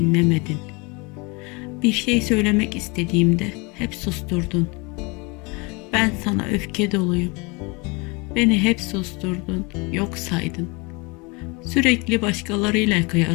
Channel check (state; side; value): quieter; right; 28.2 dB